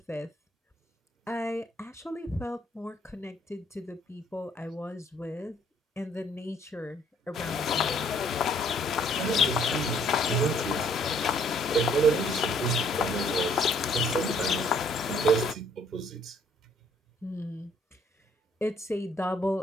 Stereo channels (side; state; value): both; normal; correlation 0.63